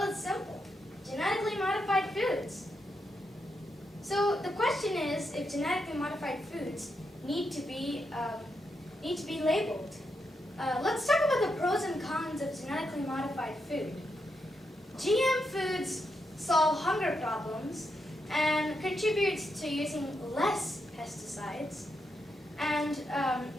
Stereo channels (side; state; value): both; normal; correlation 0.83